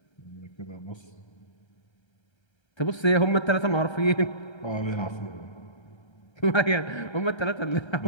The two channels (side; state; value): right; late; 1.3 ms